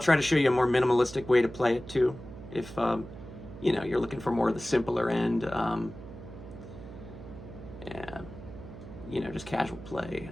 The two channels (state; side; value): noise; right; hum, 14 dB below the sound